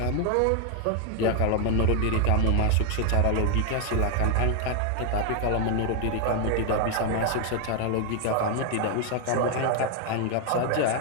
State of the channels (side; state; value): both; different; correlation 0.00